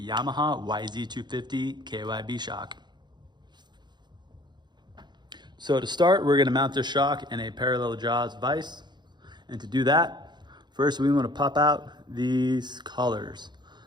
YZ250 KYB shock. So to start, we're gonna mount this shock in a parallel jaws vise. And to do that, first we wanna pop out these collars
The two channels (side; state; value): left; late; 0.21 ms